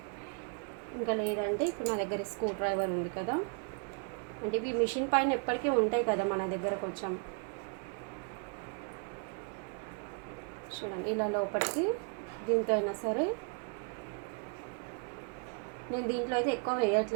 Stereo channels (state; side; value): quieter; left; 38.9 dB